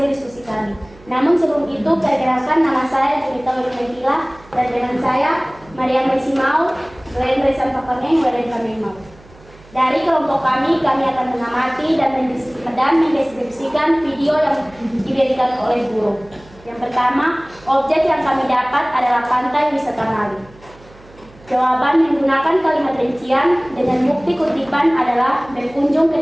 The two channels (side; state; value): right; noise; hum, 24 dB below the sound